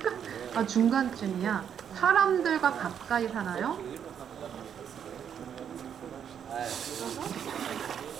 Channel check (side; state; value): left; quieter; 8.4 dB